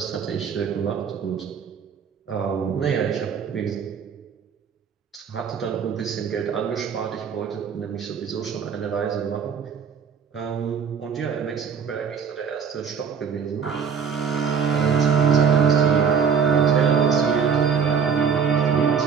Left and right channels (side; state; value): left; quieter; 6.6 dB